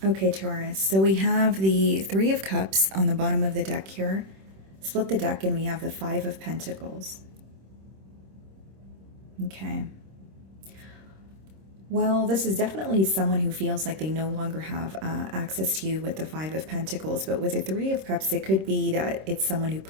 Okay, Taurus. So we have the Three of Cups on the bottom of the deck here. Split the deck and we have the Five of Pentacles. Okay. Well, this is definitely someone who feels like they no longer have access to you with the Five of Pentacles. But with the Three of Cups, it could be that it's someone who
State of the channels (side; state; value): left; late; 26 ms